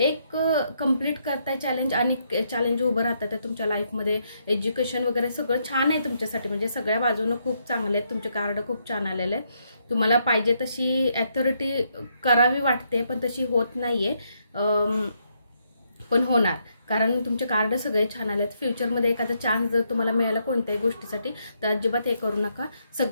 कंप्लीट करताय चॅलेंज, आणि चॅलेंज उभं राहतात आहे तुमच्या लाईफमध्ये. एज्युकेशन वगैरे सगळं छान आहे तुमच्यासाठी, म्हणजे सगळ्या बाजूने खूप चांगले आहेत. तुमचे कार्ड खूप छान आलेले आहेत. तुम्हाला पाहिजे तशी ॲथॉरिटी करावी वाटते, पण तशी होत नाहीये, पण होणार. कारण तुमचे कार्ड सगळे छान आलेत. फ्युचरमध्ये एखादा चान्स जर तुम्हाला मिळाला कोणत्याही गोष्टीसाठी, तर अजिबात हे करू नका.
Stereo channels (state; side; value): inverted; both; correlation -0.76